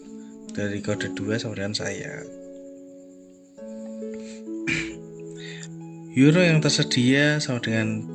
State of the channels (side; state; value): both; identical; correlation 1.00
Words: dari kode 2 sama dengan saya. Euro yang tersedia sama dengan